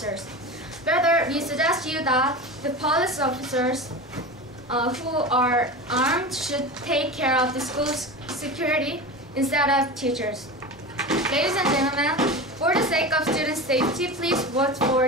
Rather, we suggest you that the police officers who are armed should take care of the school's security instead of teachers. Ladies and gentlemen, for the sake of student safety, please vote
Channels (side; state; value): both; normal; correlation 0.28